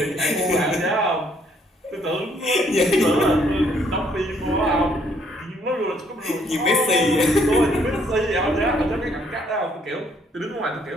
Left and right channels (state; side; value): normal; both; correlation 0.67